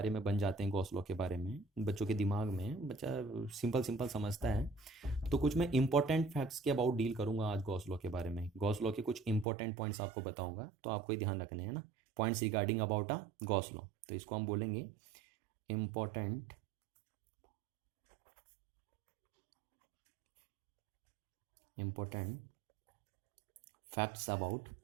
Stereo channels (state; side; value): drops out; left; at 9.5 s